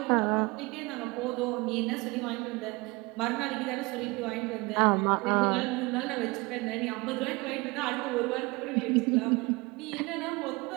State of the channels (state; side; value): quieter; left; 24.9 dB